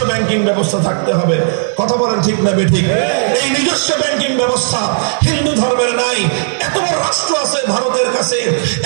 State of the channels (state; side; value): silent; left; digital silence